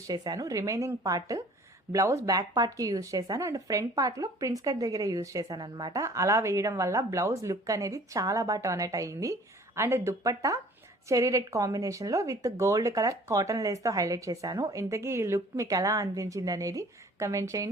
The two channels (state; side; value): normal; both; correlation 0.51